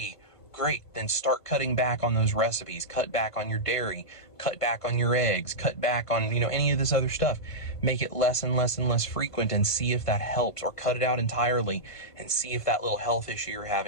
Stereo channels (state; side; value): late; right; 1.5 ms